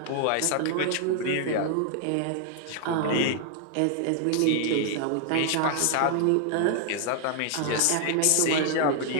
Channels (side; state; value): both; different; correlation 0.00